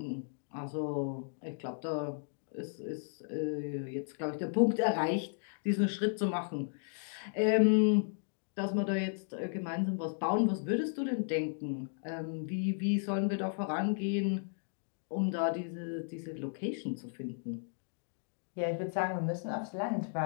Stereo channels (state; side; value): silent; right; digital silence